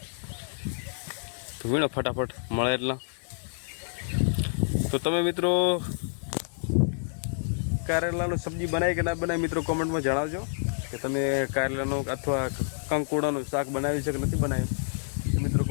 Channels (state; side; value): silent; right; digital silence